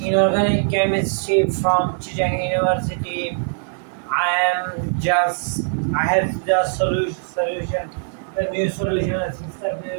chemistry from Chicheng University. I have just solution, the new solution of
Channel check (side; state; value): left; silent; 65 dB below the other